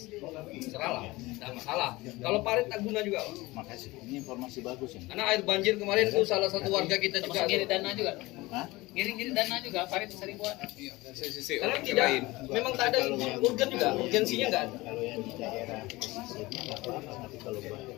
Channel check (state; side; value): quieter; right; 20.8 dB